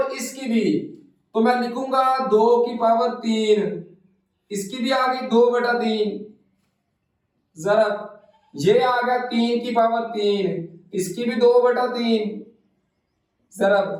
इसकी भी, तो मैं लिखूंगा 2 की पावर 3, इसकी भी आ गई 2/3, जरा ये आ गया 3 की पावर 3, इसकी भी 2/3, जरा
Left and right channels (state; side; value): identical; both; correlation 1.00